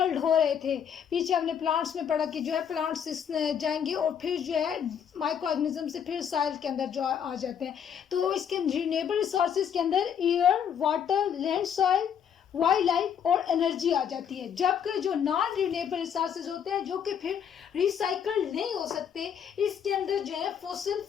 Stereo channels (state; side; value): quieter; right; 8.1 dB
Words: हो रहे थे, पीछे हमने प्लांट्स में पढ़ा कि जो है प्लांट्स जाएंगे और फिर जो है माइक्रो ऑर्गेनिज्म से फिर सॉइल के अंदर जो आ जाते हैं। तो इसके रिन्यूएबल रिसोर्सेज के अंदर air, water, land, soil, wild life और एनर्जी आ जाती है। जबकि जो नॉन रिन्यूएबल रिसोर्सेज होते हैं जो कि फिर रिसाइकल नहीं हो सकते, इसके अंदर जो है फॉसिल